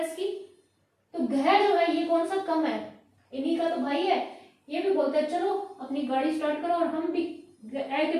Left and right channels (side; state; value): both; identical; correlation 1.00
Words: की। तो घ जो है ये कौन सा कम है, इन्हीं का तो भाई है। ये भी बोलते हैं चलो अपनी गाड़ी स्टार्ट करो और हम भी ए के